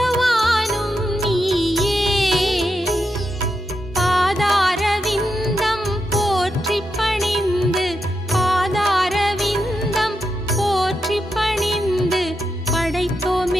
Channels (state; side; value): normal; both; correlation 0.85